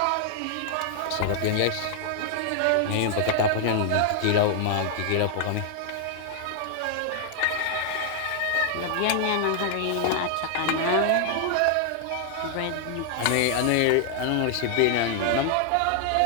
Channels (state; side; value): different; both; correlation 0.00